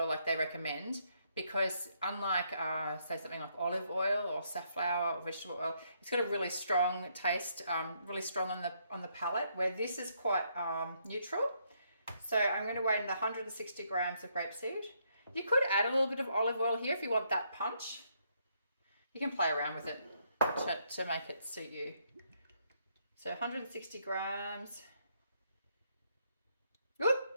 like they recommend, because unlike say something like olive oil or safflower or vegetable oil, it's got a really strong taste, really strong on the palate, where this is quite neutral. So I'm going to weigh in the 160 grams of grapeseed. You could add a little bit of olive oil here if you want that punch. You can play around with it to make it suit you. So 160 grams. Whoop.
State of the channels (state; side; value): inverted; both; correlation -0.74